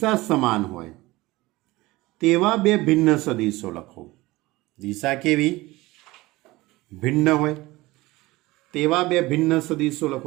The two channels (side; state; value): left; quieter; 20.1 dB